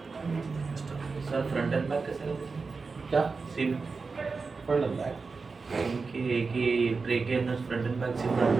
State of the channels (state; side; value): quieter; left; 4.5 dB